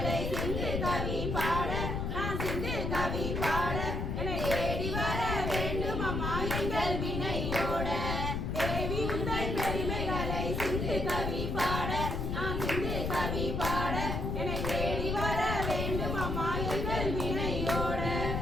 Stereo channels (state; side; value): noise; left; rumble, 1 dB below the sound